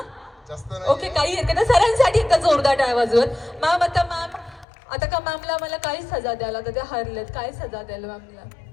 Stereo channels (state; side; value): drops out; right; at 4.7 s